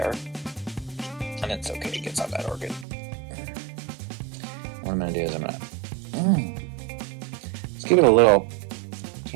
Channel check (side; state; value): left; drops out; at 2.9 s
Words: And it's okay, it gets on that orchid. What I'm going to do is I'm going to just give it a little